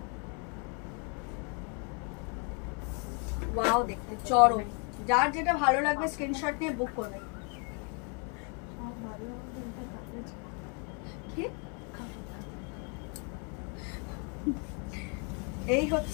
ওয়াও দেখতে চরম, যার যেটা ভালো লাগবে স্ক্রিনশট নিয়ে বুক করবে। এই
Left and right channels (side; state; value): right; quieter; 35.9 dB